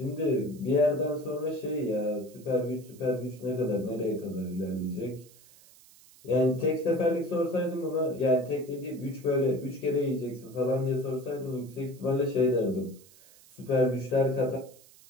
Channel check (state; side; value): noise; right; hiss, 24 dB below the sound